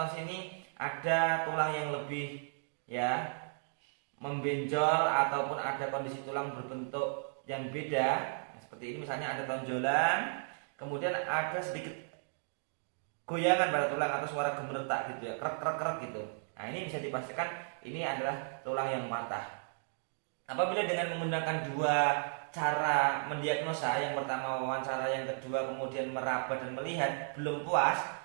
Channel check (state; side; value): silent; left; digital silence